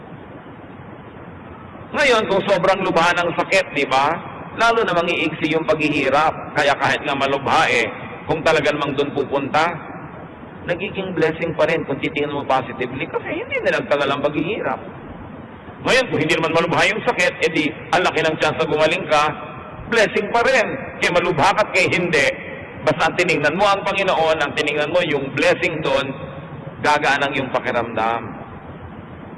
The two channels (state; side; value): identical; both; correlation 1.00